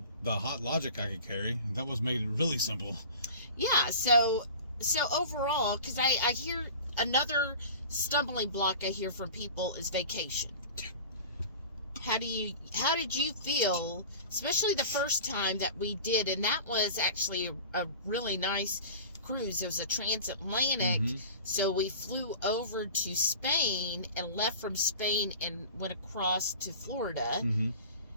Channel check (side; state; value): both; inverted; correlation -0.38